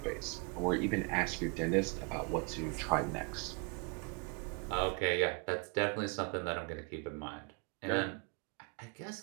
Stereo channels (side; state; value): left; quieter; 34.5 dB